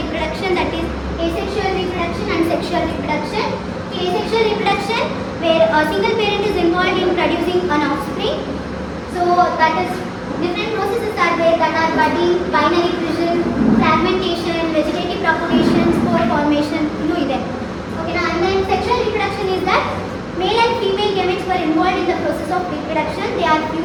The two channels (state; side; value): identical; both; correlation 1.00